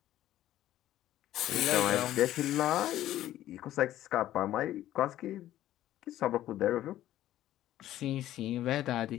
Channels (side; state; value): right; quieter; 13.4 dB